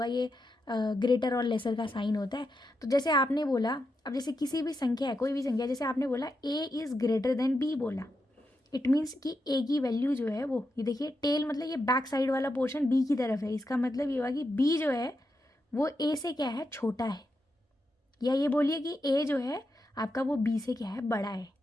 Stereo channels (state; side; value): normal; both; correlation 0.86